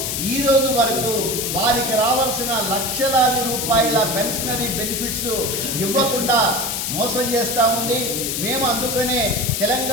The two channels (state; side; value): noise; left; hiss, 2 dB below the sound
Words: ఈరోజు వరకు వారికి రావాల్సిన లక్షలాది రూపాయల పెన్షనరీ బెనిఫిట్స్ ఇవ్వకుండా మోసం చేస్తూ ఉంది. మేము అందుకనే